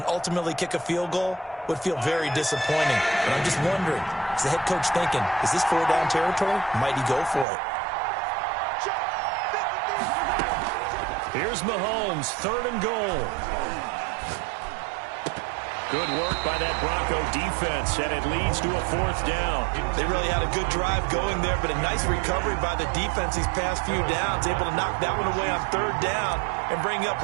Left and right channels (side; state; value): left; drops out; at 7.5 s